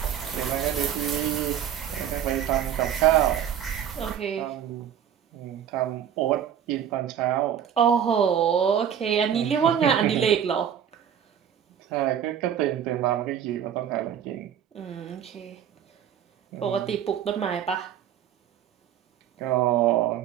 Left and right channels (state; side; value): quieter; left; 9.3 dB